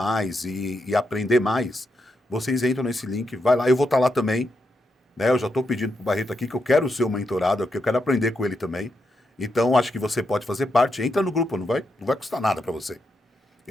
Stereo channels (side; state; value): both; normal; correlation 0.83